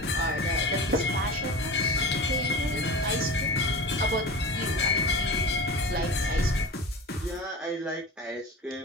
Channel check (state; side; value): normal; both; correlation 0.32